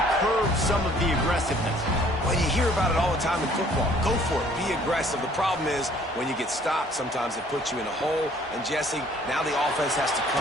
curbed some of the aggressiveness. Well, you hear about it all the time in football. Go for it. Be aggressive. The problem is when you get stopped, sometimes it puts you in a hole. And, Jesse, now the offense has to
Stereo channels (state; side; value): normal; both; correlation 0.58